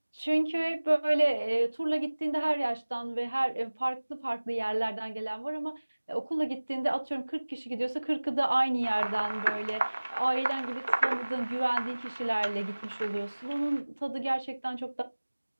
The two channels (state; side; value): inverted; both; correlation -1.00